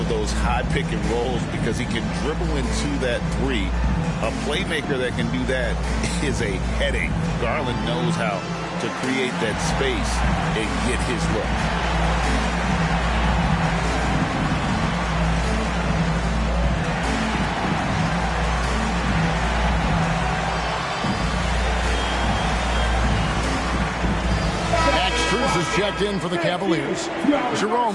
those high pick and rolls because he can dribble into that 3. A playmaker that can do that is a headache. Garland knows how to create that space and get his look. Max Strus is checked in for the Cavaliers.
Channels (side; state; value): both; identical; correlation 1.00